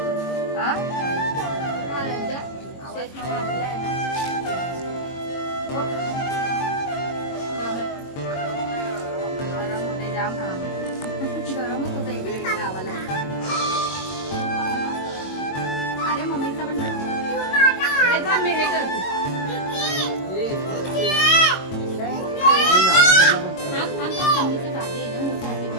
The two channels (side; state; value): right; late; 22 ms